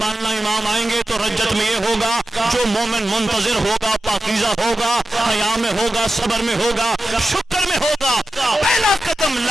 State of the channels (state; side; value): normal; both; correlation 0.92